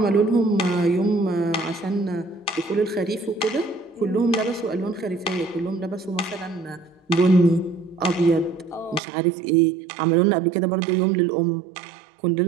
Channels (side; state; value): left; drops out; at 9.0 s